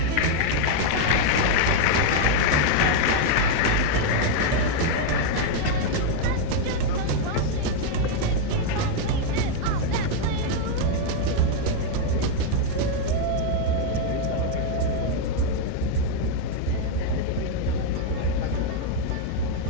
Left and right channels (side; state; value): both; different; correlation 0.00